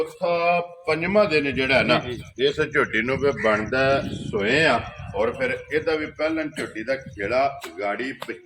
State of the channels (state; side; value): identical; both; correlation 1.00